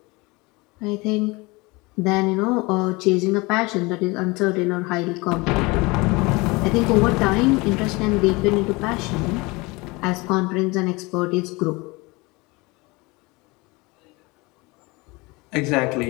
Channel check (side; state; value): right; quieter; 24.5 dB